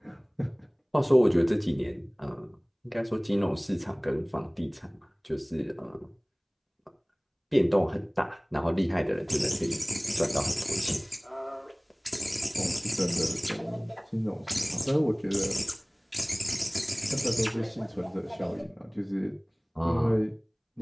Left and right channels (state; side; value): identical; both; correlation 1.00